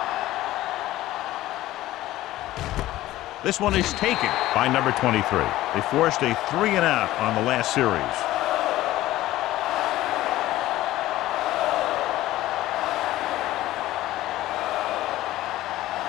This one is taken by number 23. They forced a 3-and-out on the last series.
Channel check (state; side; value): quieter; right; 15.7 dB